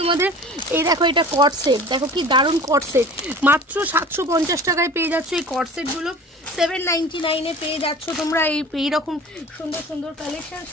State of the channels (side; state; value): both; normal; correlation 0.40